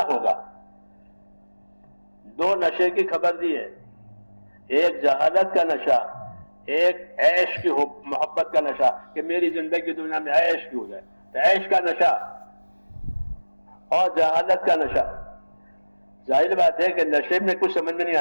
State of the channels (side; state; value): both; inverted; correlation -1.00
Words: ہوگا۔ دو نشے کی خبر دی ہے، ایک جہالت کا نشہ، ایک عیش کی محبت کا نشہ، کہ میری زندگی دنیا میں عیش کی ہو جائے، تو عیش کا نشہ اور جہالت کا نشہ۔ ظاہر بات ہے کہ نشے میں کچھ سمجھ میں نہیں